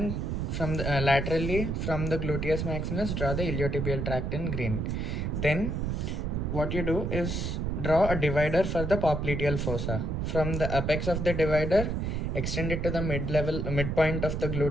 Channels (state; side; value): noise; right; rumble, 1 dB below the sound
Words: from the, laterally from the gluteus maximus, draw the iliotibial tract in green. Then, what you do is draw a divider for the popliteal fossa. From the apex of the divider, extend it to the midpoint of the